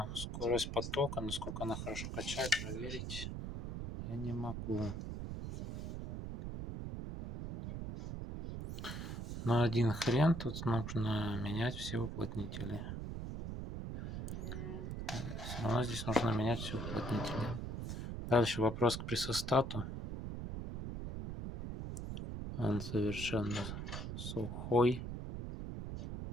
скорость потока, насколько она хорошо качает, проверить я не могу. Но один хрен, тут нужно менять все уплотнители. Все равно здесь нужно менять все уплотнители. Дальше вопрос к пресостату. Он совершенно сухой.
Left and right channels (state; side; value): noise; right; rumble, 5 dB below the sound